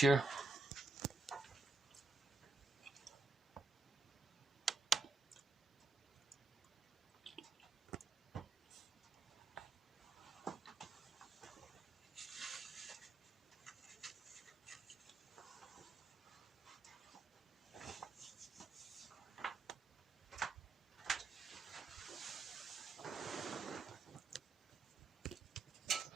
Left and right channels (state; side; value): quieter; left; 3.4 dB